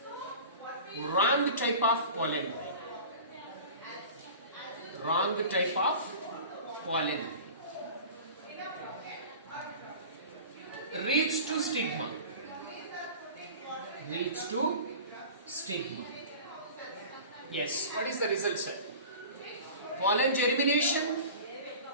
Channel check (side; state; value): both; inverted; correlation -0.38